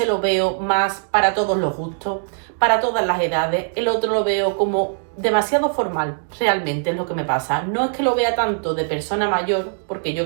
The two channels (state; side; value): silent; left; digital silence